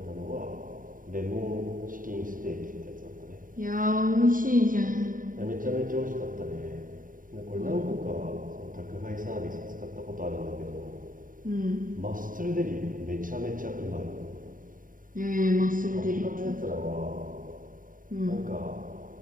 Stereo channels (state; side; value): late; left; 0.39 ms